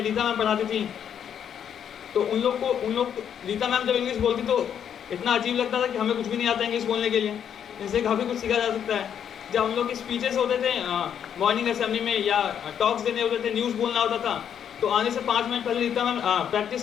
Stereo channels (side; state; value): right; quieter; 8.7 dB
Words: रीता मैम पढ़ाती थी। तो उन लोग रीता मैम जब इंग्लिश बोलती तो इतना अजीब लगता था कि हमें कुछ भी नहीं आता इंग्लिश बोलने के लिए, इनसे काफ़ी कुछ सीखा जा सकता है। जब हम लोग की स्पीचेस होते थे मॉर्निंग असेंबली में या टॉक्स देने होते थे, न्यूज़ बोलना होता था, तो आने से 5 मिनट पहले रीता मैम